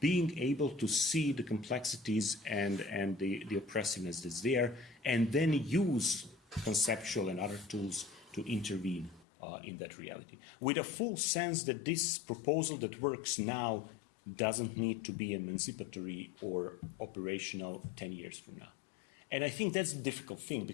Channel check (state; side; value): drops out; right; at 9.2 s